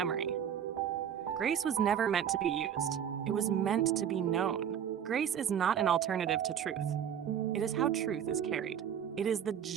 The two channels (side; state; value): left; quieter; 9.0 dB